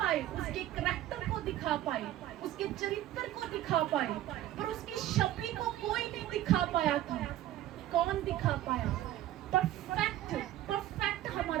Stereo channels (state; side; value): quieter; left; 13.5 dB